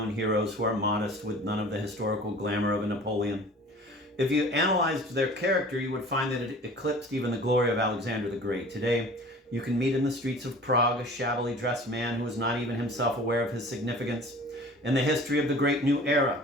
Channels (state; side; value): normal; both; correlation 0.44